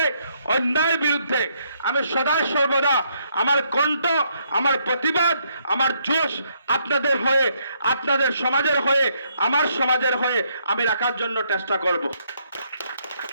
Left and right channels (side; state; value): both; inverted; correlation -0.72